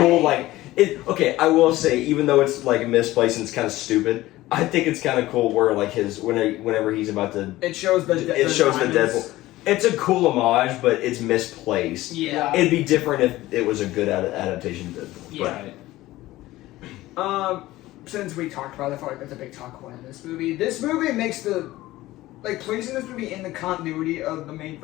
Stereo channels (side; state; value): right; quieter; 17.1 dB